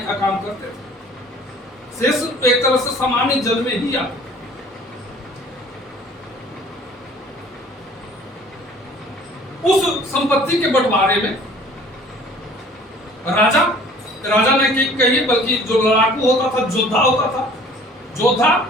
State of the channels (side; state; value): both; normal; correlation 0.51